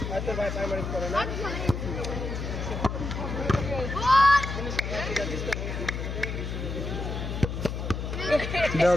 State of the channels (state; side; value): noise; left; hum, 4 dB below the sound